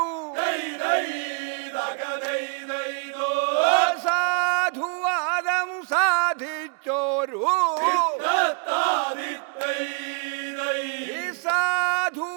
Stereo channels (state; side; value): quieter; left; 38.5 dB